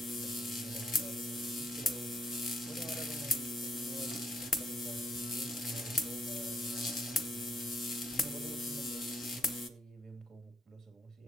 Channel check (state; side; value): normal; both; correlation 0.71